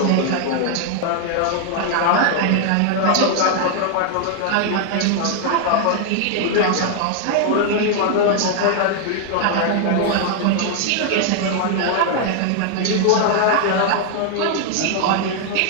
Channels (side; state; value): both; different; correlation 0.00